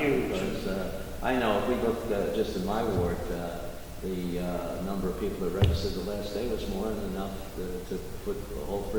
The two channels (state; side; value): identical; both; correlation 1.00